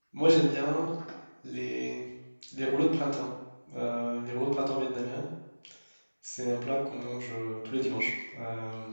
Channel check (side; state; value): both; inverted; correlation -1.00